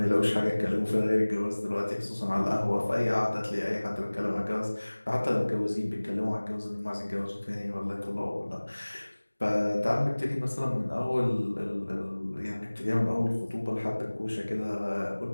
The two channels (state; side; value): inverted; both; correlation -1.00